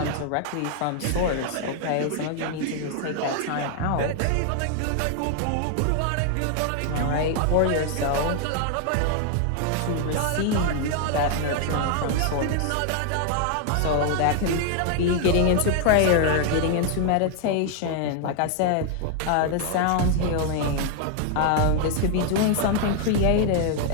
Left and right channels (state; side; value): different; both; correlation 0.00